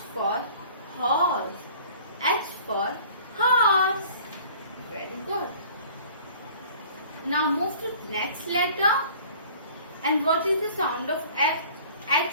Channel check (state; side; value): inverted; both; correlation -0.49